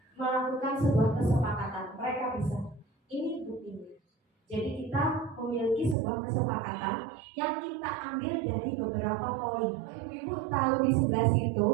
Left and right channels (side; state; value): left; drops out; at 6.0 s